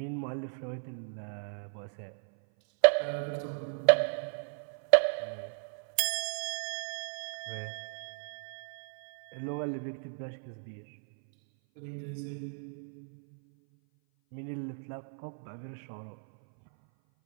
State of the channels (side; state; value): left; silent; 55 dB below the other